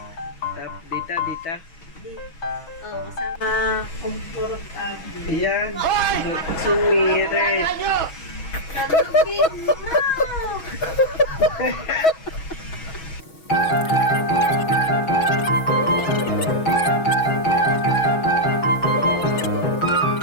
Dito, dito. Kasama komportable. Ayan. Sumiret. Kalugin mo!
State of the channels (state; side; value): late; right; 6.2 ms